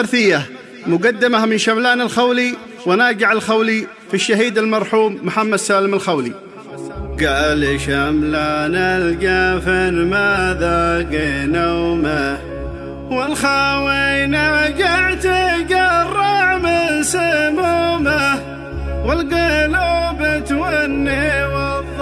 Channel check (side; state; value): both; identical; correlation 1.00